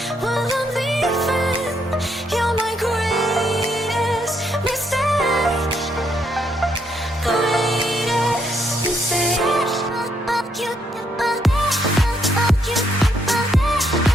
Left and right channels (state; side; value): normal; both; correlation 0.74